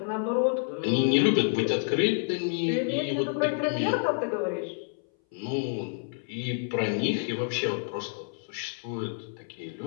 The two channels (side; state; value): right; silent; 59 dB below the other